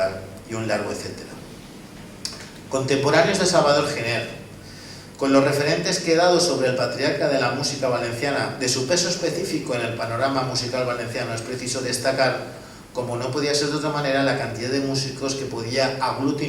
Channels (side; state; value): both; identical; correlation 1.00